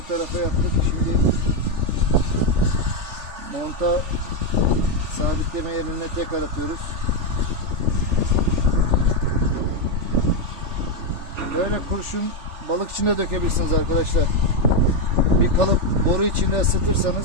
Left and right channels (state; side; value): late; left; 3.4 ms